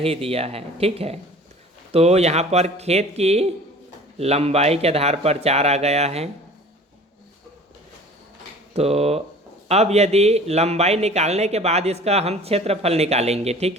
दिया है, ठीक है। तो यहाँ पर खेत की लंबाई के आधार पर 4 आ गया है। तो अब यदि लंबाई निकालने के बाद इसका हम क्षेत्रफल निकालेंगे,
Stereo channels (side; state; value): both; normal; correlation 0.45